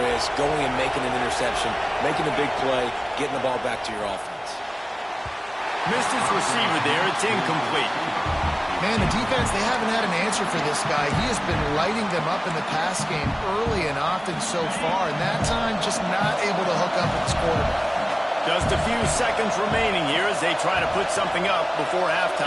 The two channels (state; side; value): identical; both; correlation 1.00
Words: is, going and making an interception, making a big play, getting the ball back to your offense. Missed his receiver there. It's incomplete. Man, the defense, they haven't had an answer for this guy. He has been lighting them up in the pass game early and often so far, and that time just not able to hook up with his quarterback. Just a few seconds remaining here as they try to put something up before